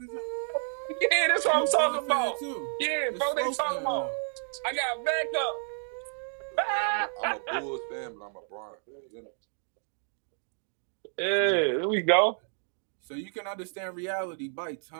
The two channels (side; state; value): left; silent; 58 dB below the other